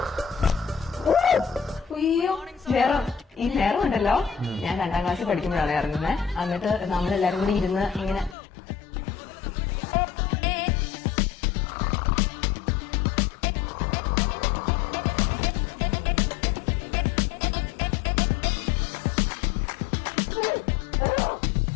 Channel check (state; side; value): drops out; right; at 8.3 s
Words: അയ്യോ ഈ നേരം ഉണ്ടല്ലോ, ഞാൻ 2ാം ക്ലാസ്സിൽ പഠിക്കുമ്പോഴാണ് ഇറങ്ങുന്നത്. എന്നിട്ട് നമ്മളെല്ലാരും കൂടി ഇരുന്ന് ഇങ്ങനെ